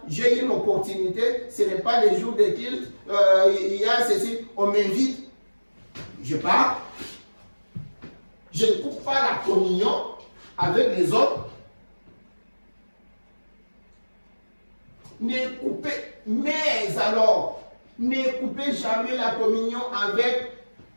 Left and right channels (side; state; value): both; inverted; correlation -1.00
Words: J'ai une opportunité, ce n'est pas les jours de culte, il y a ceci, on m'invite, je pars. Je ne coupe pas la communion avec les autres. Ne coupez, mais alors, ne coupez jamais la communion avec